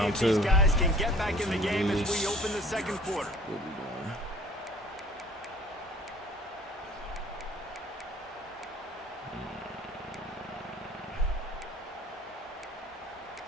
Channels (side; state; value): both; normal; correlation 0.52